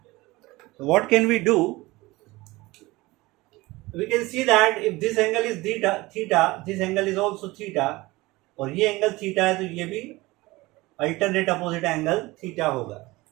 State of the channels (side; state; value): left; quieter; 20.8 dB